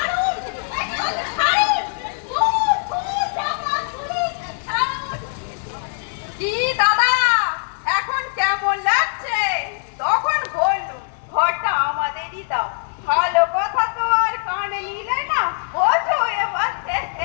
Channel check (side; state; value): right; silent; 56 dB below the other